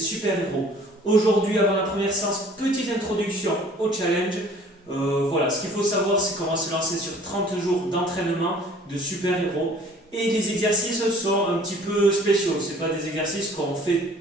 Aujourd'hui, avant la première séance, petite introduction au challenge. Voilà, ce qu'il faut savoir, c'est qu'on va se lancer sur 30 jours d'entraînement de super-héros. Et les exercices sont un petit peu spéciaux. Ce pas des exercices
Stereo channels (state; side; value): normal; both; correlation 0.52